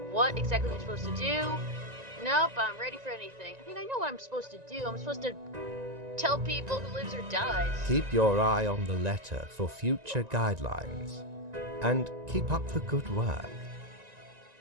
what exactly I'm supposed to do. Nope, I'm ready for anything. I mean, I know what I'm supposed to do. I'm supposed to tell people who lives or dies. Keep your eye on the letter for future guidelines. And keep up the good work.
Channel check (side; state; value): left; late; 1.9 ms